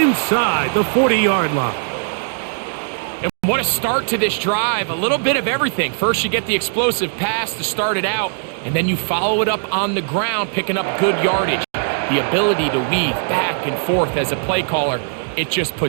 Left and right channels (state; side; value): silent; left; digital silence